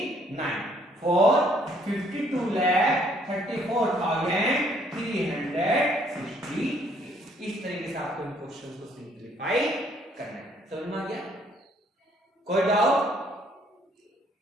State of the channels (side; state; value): both; normal; correlation 0.65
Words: फोर्थ 52,34,360। इस तरीके से आपको इन क्वेश्चंस को सिंपलीफाई करना है। समझ में आ गया? कोई डाउट,